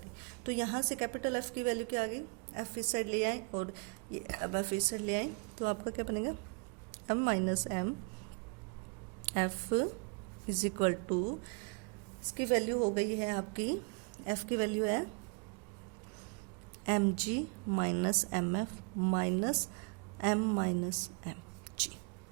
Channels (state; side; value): quieter; left; 36.4 dB